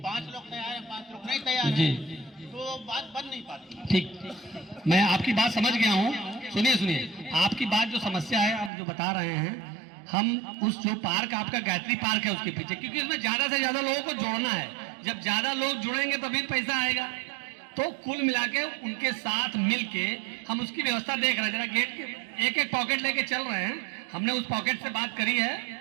5 लोग तैयार हैं, 5 लोग नहीं तैयार हैं, तो बात बन नहीं पाती। ठीक, मैं आपकी बात समझ गया हूँ। सुनिए, आपकी बात जो समस्या है आप जो बता रहे हैं, हम उस जो पार्क आपका गायत्री पार्क है उसके पीछे, क्योंकि उसमें ज्यादा से ज्यादा लोगों को जोड़ना है, जब ज्यादा लोग जुड़ेंगे तभी पैसा आएगा, तो कुल मिला के उनके साथ मिलके हम उसकी व्यवस्था देख रहे हैं। जरा गेट के एक पॉकेट लेके चल रहे हैं, हमने उस पॉकेट से बात करी है,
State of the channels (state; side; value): drops out; left; at 8.7 s